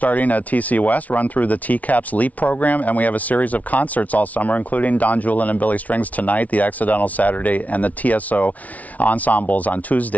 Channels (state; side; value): late; right; 0.070 ms